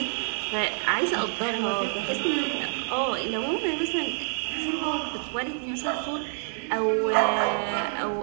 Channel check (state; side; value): silent; left; 60 dB below the other